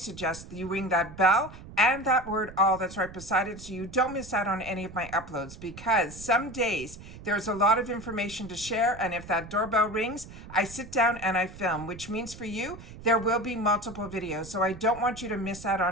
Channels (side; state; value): right; noise; rumble, 15 dB below the sound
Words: suggest that you ring that bell and that word all that's right beside it so you don't miss out on any of my uploads, because some days there's a lot of information to share, and if that doorbell rings, I sit down and I film, which means for you there will be multiple videos, so I don't want you to miss out